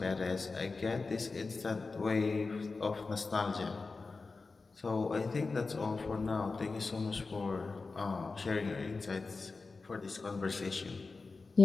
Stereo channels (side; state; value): right; quieter; 4.0 dB